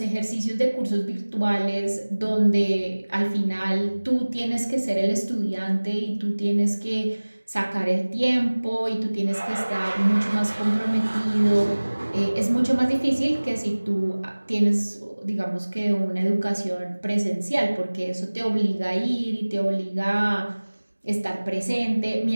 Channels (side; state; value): both; inverted; correlation -1.00